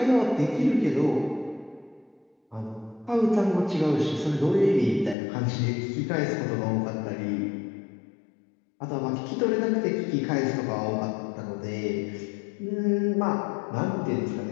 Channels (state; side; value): drops out; right; at 5.2 s